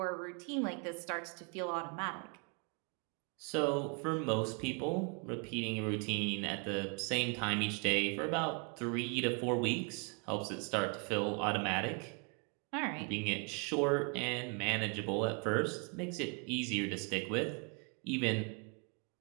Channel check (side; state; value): left; quieter; 35.1 dB